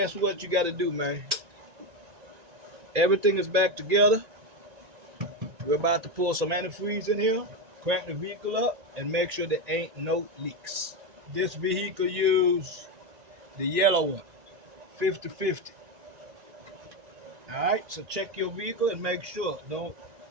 what you gotta do, man? Everything is back together. We're about to pour some antifreeze in here, crank the vehicle up, and make sure there ain't no leaks. This vehicle use the yellow one, 50/50. All right, so check your vehicle and make sure. Don't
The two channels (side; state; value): left; late; 1.9 ms